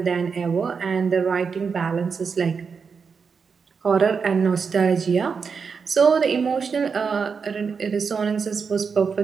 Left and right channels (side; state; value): left; quieter; 5.7 dB